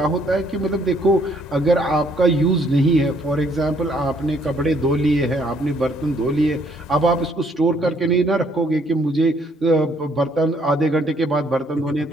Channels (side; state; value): both; normal; correlation 0.66